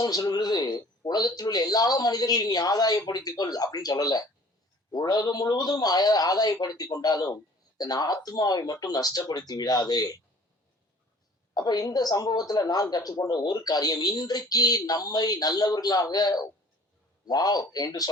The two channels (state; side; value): normal; both; correlation 0.50